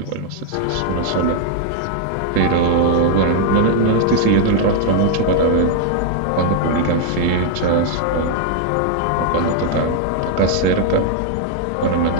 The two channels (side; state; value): both; different; correlation 0.00